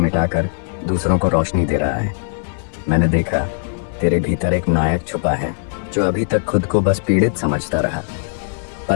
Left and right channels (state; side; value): silent; right; 66 dB below the other